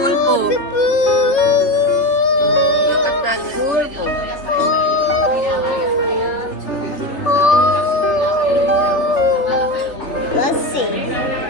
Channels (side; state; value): right; late; 3.3 ms